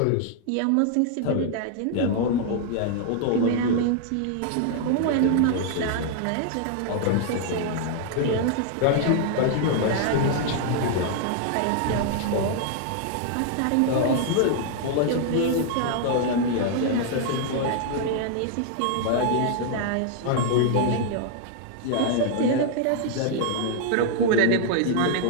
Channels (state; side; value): different; both; correlation 0.00